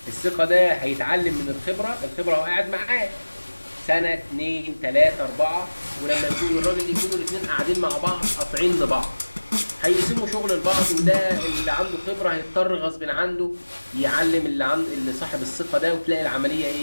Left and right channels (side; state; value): both; inverted; correlation -1.00